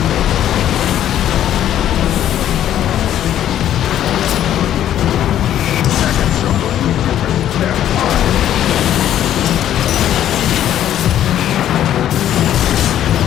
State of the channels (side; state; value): right; quieter; 11.3 dB